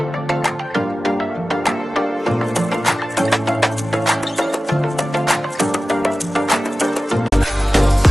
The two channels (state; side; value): normal; both; correlation 0.96